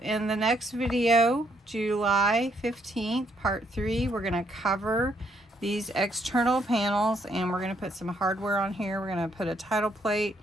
in the next video, July 15th, part 3, we're going to cover these external panels, and we're going to put some hardware on here. We're going to put a title plate.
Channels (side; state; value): both; normal; correlation 0.72